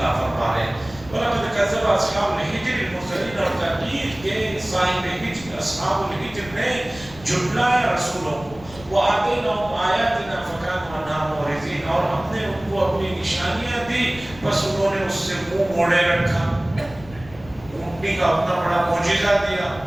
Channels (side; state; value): left; noise; rumble, 19 dB below the sound